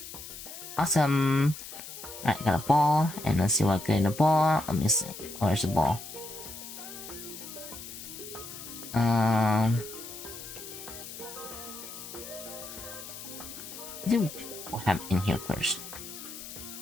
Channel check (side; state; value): left; noise; hiss, 12 dB below the sound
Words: Awesome. Alright, got a ball, and let's see what I get in the ball. Let me see. Where's the ball? I think what happened in here first.